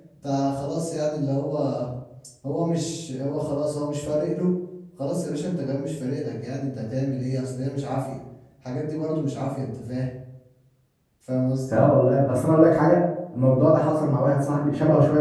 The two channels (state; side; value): identical; both; correlation 1.00